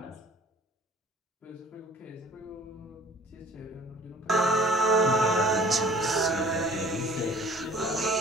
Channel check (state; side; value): normal; both; correlation 0.51